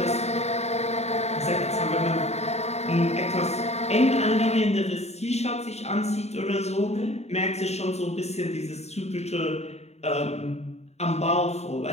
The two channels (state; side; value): late; right; 0.31 ms